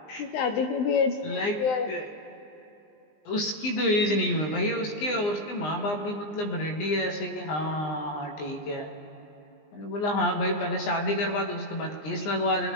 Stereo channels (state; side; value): late; right; 20 ms